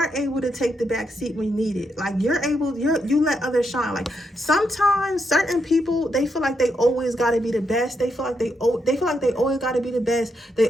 able to take the back seat when you need it. Like, you let others shine. Like, sometimes certain people, they feel like they always got to be the best. They feel like they always got to be the best. They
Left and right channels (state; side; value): normal; both; correlation 0.81